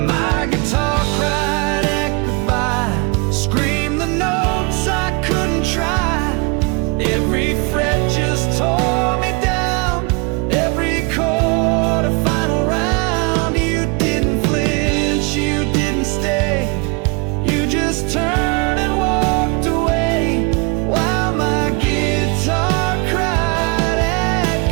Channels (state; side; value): quieter; left; 29.9 dB